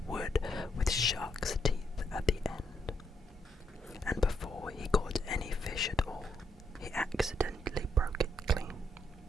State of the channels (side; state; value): both; normal; correlation 0.76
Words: wood with shark's teeth at the end, and before he caught any fish at all, he accidentally broke it clean